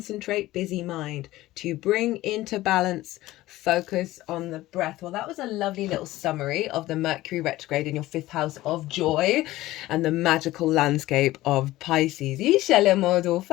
busy mind. To bring into balance, focus on the breath. Well, that was a lovely little summary of the Mercury retrograde in your fifth house of joy and the magical landscape of Pisces. Right.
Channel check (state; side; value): quieter; right; 16.8 dB